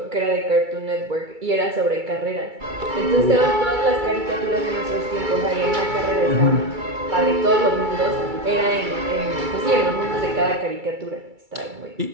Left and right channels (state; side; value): late; left; 2.3 ms